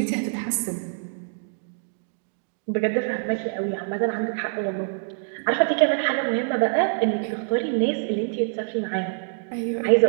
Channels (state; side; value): silent; left; digital silence